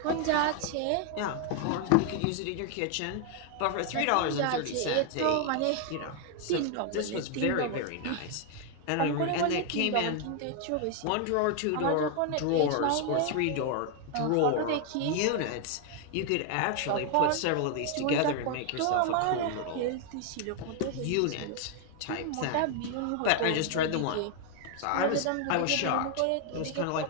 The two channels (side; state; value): both; different; correlation 0.00